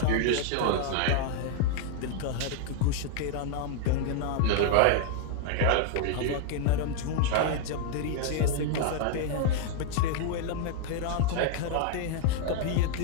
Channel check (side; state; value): both; different; correlation 0.00